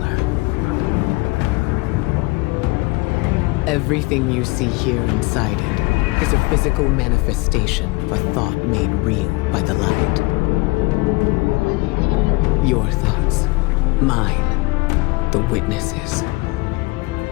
Everything you see here inside it is a physical manifestation of a thought made real by the light. Your thoughts, mine, the Witness's.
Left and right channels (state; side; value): quieter; right; 25.0 dB